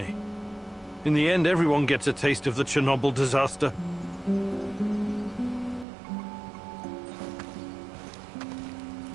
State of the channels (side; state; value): left; drops out; at 5.9 s